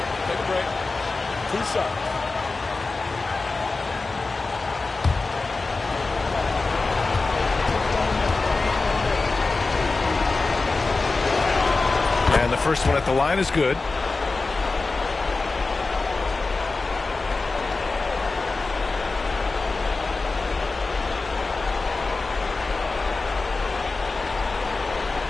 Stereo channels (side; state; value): right; quieter; 3.7 dB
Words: Take a break. 2 shots. And the first one at the line is good.